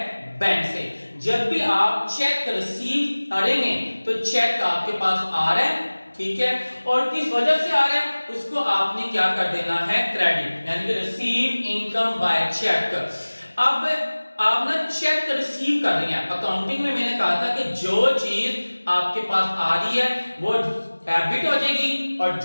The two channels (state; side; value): inverted; both; correlation -1.00